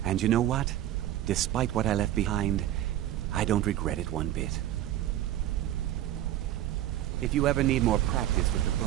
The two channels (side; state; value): left; quieter; 13.1 dB